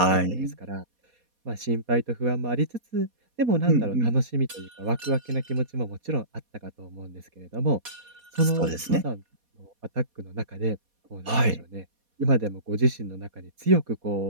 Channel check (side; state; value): left; late; 4.2 ms